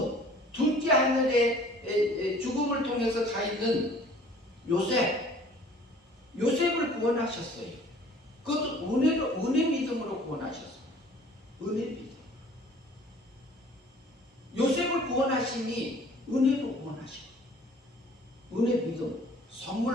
둘째 하늘에 죽음을 통해서 가 있는 요셉을 구원하셨어요. 그것도 은혜 믿음으로 구원하셨어요. 은혜 믿음. 요셉을 구원하시니 은혜로 구원하시고, 은혜 믿음,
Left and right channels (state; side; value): normal; both; correlation 0.51